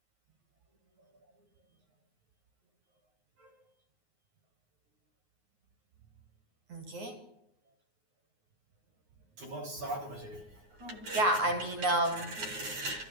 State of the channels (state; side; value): late; left; 9.5 ms